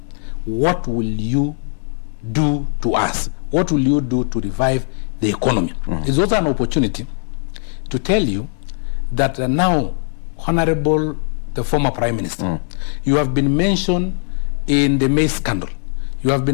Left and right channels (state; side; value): silent; right; digital silence